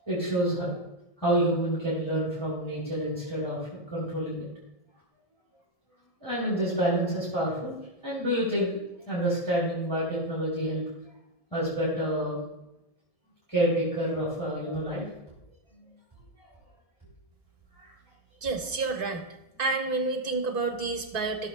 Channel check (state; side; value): late; right; 1.7 ms